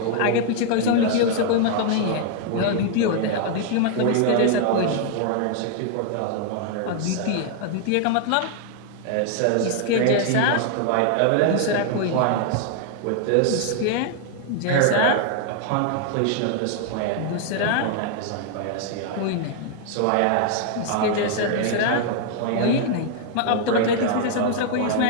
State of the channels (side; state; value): both; different; correlation 0.00